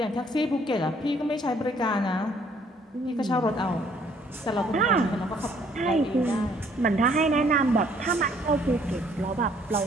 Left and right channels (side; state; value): both; normal; correlation 0.63